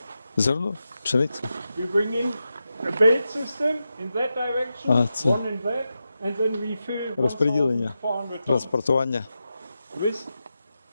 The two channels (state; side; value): inverted; both; correlation -0.90